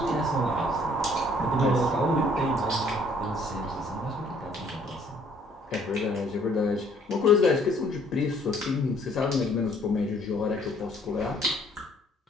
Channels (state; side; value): normal; both; correlation 0.61